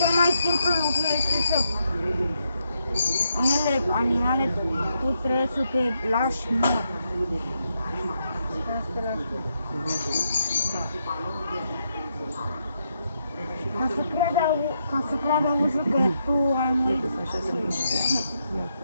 mai simplu lucru este să unele animale tu trebuie să te lași mort. Trebuie să te lași mort. Ca să creadă ursul că tu ai murit.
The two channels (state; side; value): inverted; both; correlation -0.80